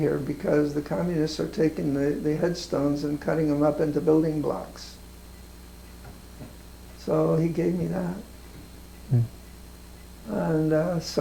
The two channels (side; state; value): both; identical; correlation 1.00